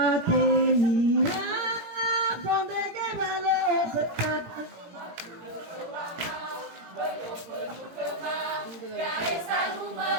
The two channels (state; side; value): late; left; 18 ms